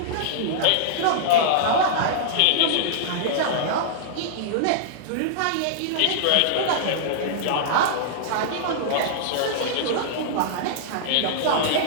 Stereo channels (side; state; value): both; different; correlation -0.02